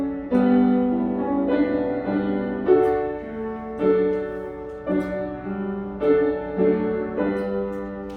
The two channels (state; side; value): identical; both; correlation 1.00